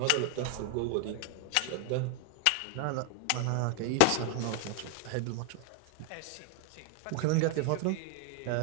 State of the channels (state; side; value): different; both; correlation 0.00